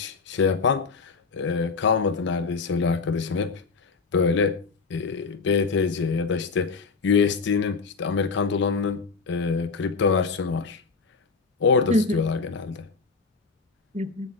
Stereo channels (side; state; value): right; quieter; 4.7 dB